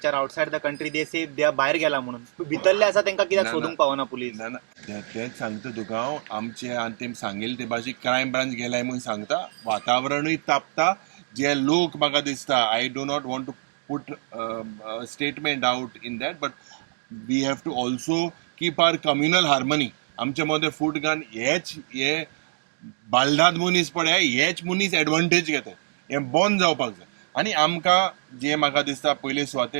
are outside the country. They say they are भायर गेला म्हणून. भितरले आसा तांकां कित्याक सोदूंक पावना police? ना तेच सांगता तुका हांव. आमचे आनी तेम सांगेल ते भाशेक क्रायम ब्रांच गेलाय म्हणून सांगता. वातावरणूय तापता. जे लोक म्हाका दिसता I do not want to put statement out in that but we have to also keep our communal harmony. आमचे मदें फूट घान हे बालदाद मनीस पळय हेच मनीस एडवांटेज घेतात. हे बंद जावपाक जाय आनी आमकां जे म्हाका दिसता पयले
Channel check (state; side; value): silent; left; digital silence